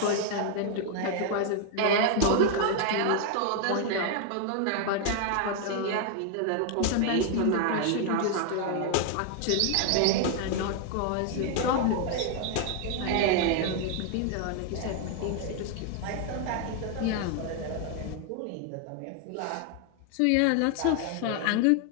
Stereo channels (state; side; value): different; both; correlation 0.01